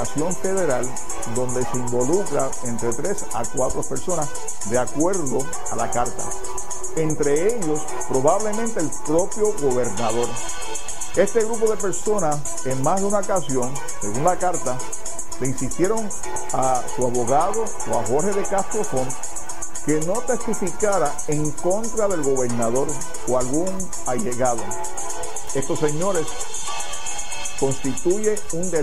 federal donde se involucra entre 3 a 4 personas de acuerdo a la carta. Entre ellos, probablemente el propio gobernador. Este grupo de personas, en más de una ocasión, según la carta, le insistieron a su abogado o a Jorge de Castro Font que no testificara en contra del gobernador o algún allegado. Estos señores constituye un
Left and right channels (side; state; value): both; identical; correlation 1.00